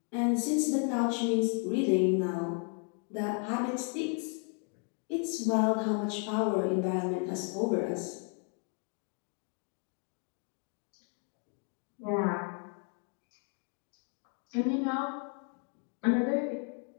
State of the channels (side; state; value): right; quieter; 38.6 dB